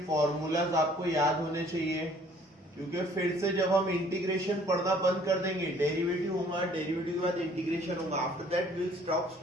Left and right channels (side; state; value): both; normal; correlation 0.57